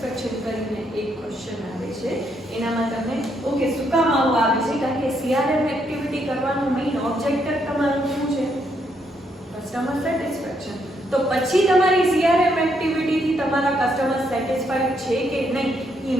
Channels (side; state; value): both; normal; correlation 0.75